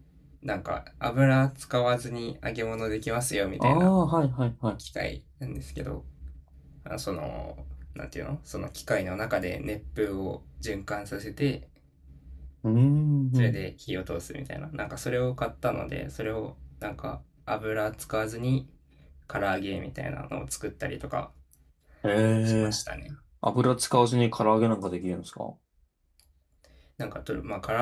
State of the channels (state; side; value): identical; both; correlation 1.00